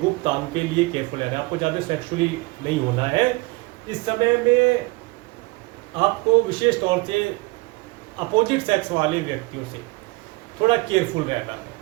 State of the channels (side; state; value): left; quieter; 24.3 dB